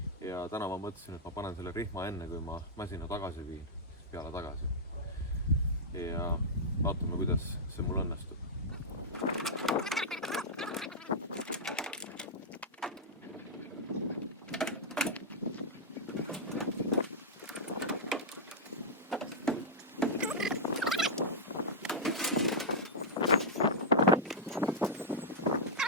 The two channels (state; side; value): normal; both; correlation -0.08